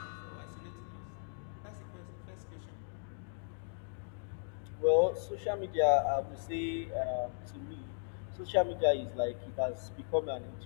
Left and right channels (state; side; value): silent; right; digital silence